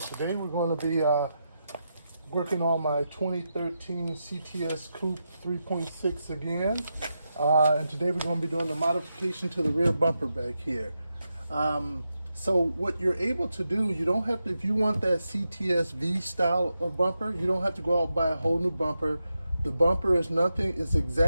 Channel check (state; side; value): inverted; both; correlation -0.87